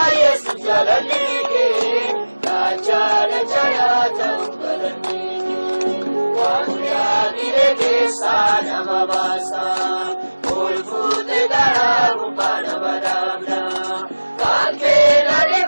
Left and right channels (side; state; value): both; inverted; correlation -1.00